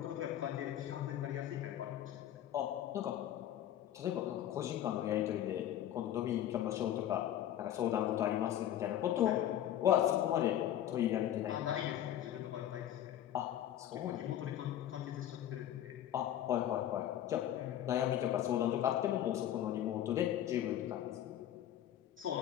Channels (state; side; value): quieter; right; 11.6 dB